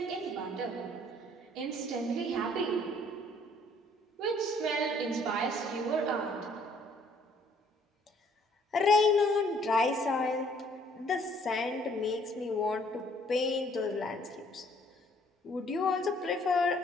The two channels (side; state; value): both; normal; correlation 0.62